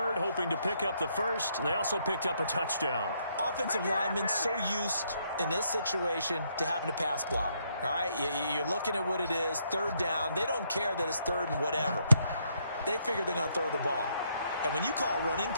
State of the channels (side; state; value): both; inverted; correlation -0.73